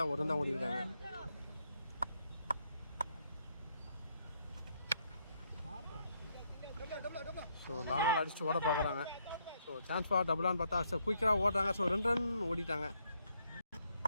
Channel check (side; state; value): both; inverted; correlation -0.73